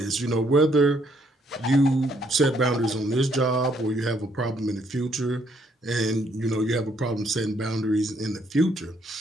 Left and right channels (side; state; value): both; normal; correlation 0.70